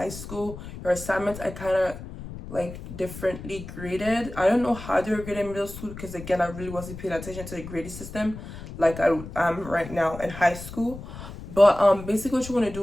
school, your assignments I kind of like differently graded. I don't know how they were graded in middle school, because again, I really wasn't paying attention to the grading system like I am right now in high school. But basically what you want to do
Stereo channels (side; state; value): left; noise; rumble, 12 dB below the sound